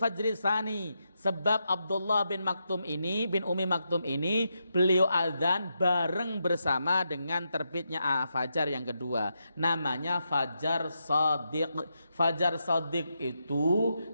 tsani. Sebab Abdullah bin Ummi Maktum ini beliau azan bareng bersama dengan terbitnya fajar yang kedua. Namanya fajar shadiq. Fajar shadiq itu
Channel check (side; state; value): both; inverted; correlation -0.84